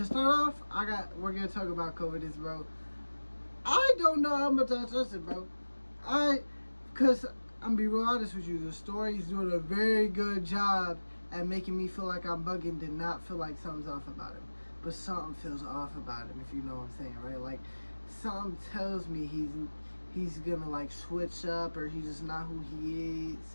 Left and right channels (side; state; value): both; inverted; correlation -1.00